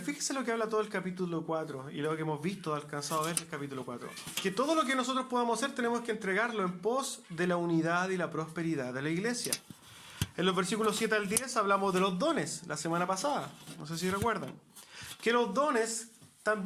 Fíjese lo que habla todo el capítulo 4 y lo que hemos visto, alcanzado a ver el capítulo 4. Que todo lo que nosotros podamos hacer tenemos que entregarlo en pos de la unidad y la prosperidad de la iglesia. En los versículos 7 al 10 hablamos de los dones la semana pasada. No sé si recuerdan. Que los dones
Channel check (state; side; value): identical; both; correlation 1.00